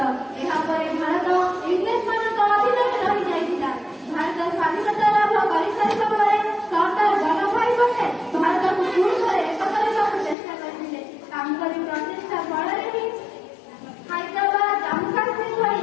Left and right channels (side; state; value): right; drops out; at 10.4 s